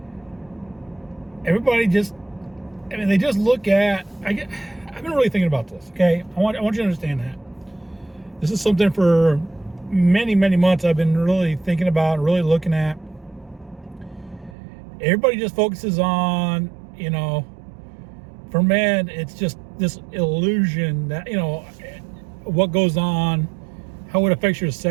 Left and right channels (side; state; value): left; drops out; at 14.6 s